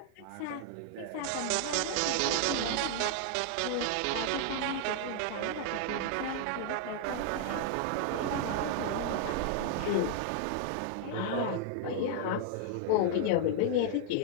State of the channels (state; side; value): different; both; correlation 0.00